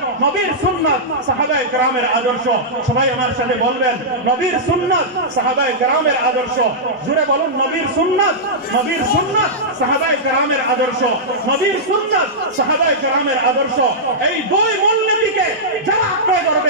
নবীর সুন্নাত, সাহাবায়ে কেরামের আদর্শ। সবাই আমার সাথে বলবেন নবীর সুন্নাত, সাহাবায়ে কেরামের আদর্শ। জোরে বলুন নবীর সুন্নাত, নবীর সুন্নাত, সাহাবায়ে কেরামের আদর্শ, নবীর সুন্নাত, সাহাবায়ে কেরামের আদর্শ। এই দুই মূলনীতিকে যারা আঁকড়ে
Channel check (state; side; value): normal; both; correlation -0.12